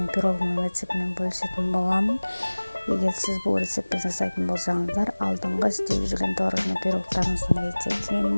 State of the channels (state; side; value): inverted; both; correlation -1.00